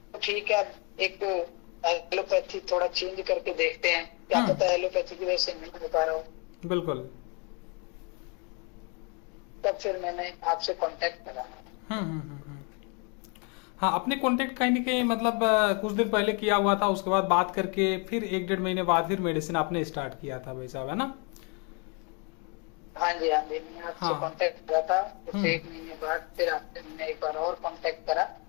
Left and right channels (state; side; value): quieter; right; 32.6 dB